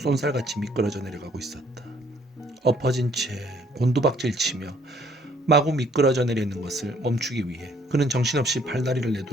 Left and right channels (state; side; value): normal; both; correlation 0.63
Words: 미끄러져 내려가고 있었다. 엎어진 채 곤두박질 치며 마구 미끄러져 내리는 것을 멈추기 위해 그는 정신없이 팔다리를